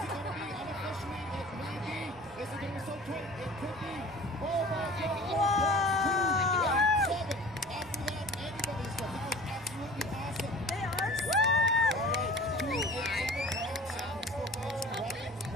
it gonna be? Unofficially, it may be. Is it gonna be so tight? It could be. Oh my God. Whoa! 2, 8, 7. After that, anybody's good. That was absolutely awesome. They are so All right, 2, 8, 7. Still facing Dragons,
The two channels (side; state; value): both; normal; correlation 0.42